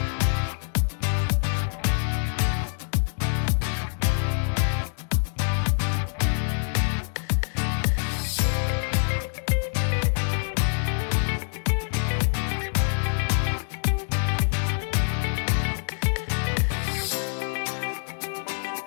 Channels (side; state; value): right; silent; digital silence